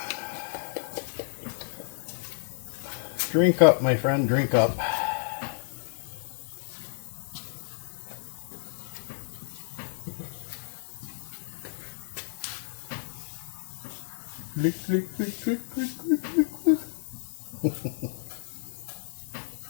Drink up, my friend, drink up.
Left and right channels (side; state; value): right; silent; 58 dB below the other